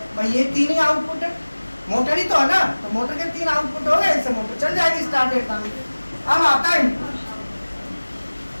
भाई, ये 3 ही आउटपुट है, मोटर ही तो है ना। तो मोटर के 3 आउटपुट हो गए, इससे मोटर चल जाएगी स्टार्ट डेल्टा में। अब आता है इनपुट।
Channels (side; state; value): both; inverted; correlation -1.00